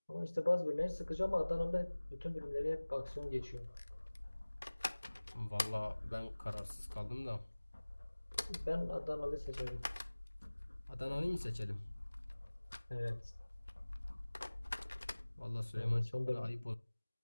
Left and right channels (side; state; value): both; inverted; correlation -1.00